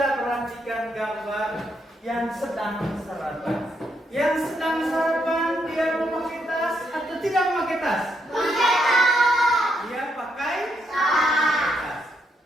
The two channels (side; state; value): both; normal; correlation 0.77